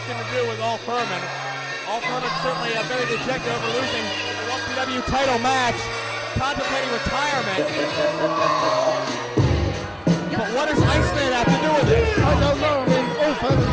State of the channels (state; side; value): identical; both; correlation 1.00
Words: to do with All Firman. All Firman's certainly very dejected over losing the LPW title match, contemplating retirement. But what does Iceman have to do with it? I don't know. I mean, All Firman's